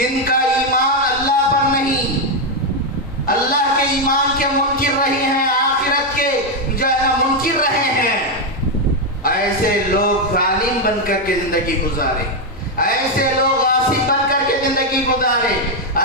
کا ایمان اللہ پر نہیں، اللہ کے ایمان کے منکر رہے ہیں، آخرت کے جو منکر رہے ہیں، ایسے لوگ ظالم بن کر کے زندگی گزارے، ایسے لوگ غاصب بن کر کے زندگی گزارے،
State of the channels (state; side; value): normal; both; correlation 0.03